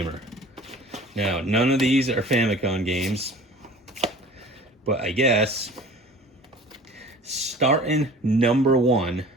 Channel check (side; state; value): both; normal; correlation 0.44